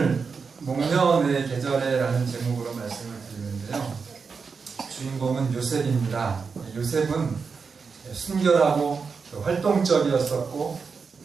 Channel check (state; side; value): quieter; left; 5.3 dB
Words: 목련의 계절에라는 제목으로 말씀을 드리는데요. 주인공은 요셉입니다. 요셉은 순결하고 활동적이었었고